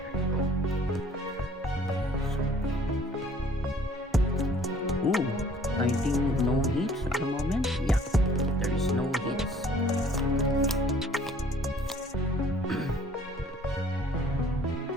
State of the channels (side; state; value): both; normal; correlation 0.56